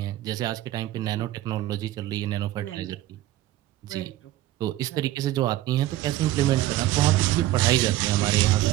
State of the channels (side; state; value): left; quieter; 15.0 dB